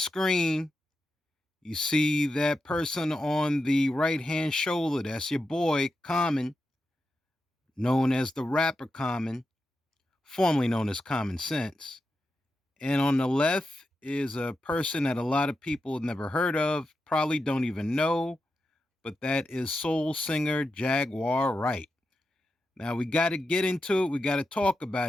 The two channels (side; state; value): both; normal; correlation 0.89